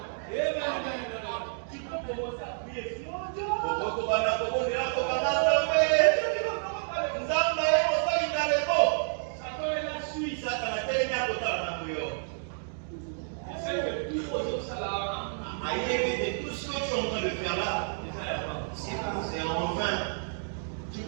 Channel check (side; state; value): left; silent; digital silence